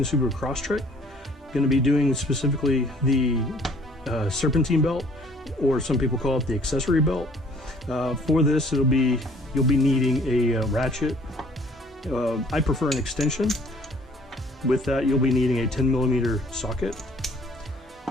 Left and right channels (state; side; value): normal; both; correlation 0.57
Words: Subaru Crosstrek. Going to be doing specifically the Serpentine belt, or some people call it the Accessory belt. For this, you'll be needing a ratchet. I prefer an extension. With that, you'll be needing a 10mm socket